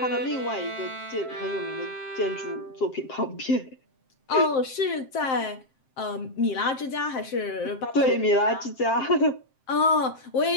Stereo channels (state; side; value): late; right; 7.6 ms